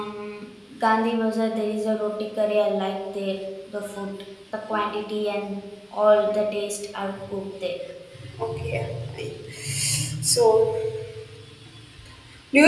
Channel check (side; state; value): both; identical; correlation 1.00